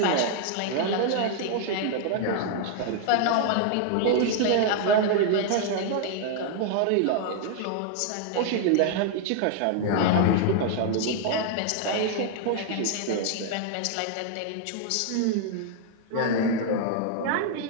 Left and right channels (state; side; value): different; both; correlation 0.00